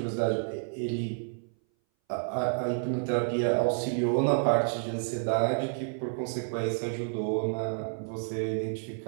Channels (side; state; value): left; silent; 58 dB below the other